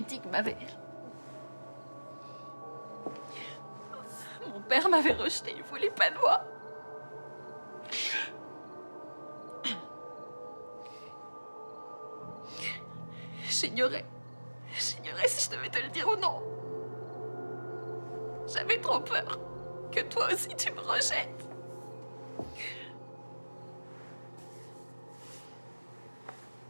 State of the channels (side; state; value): both; inverted; correlation -1.00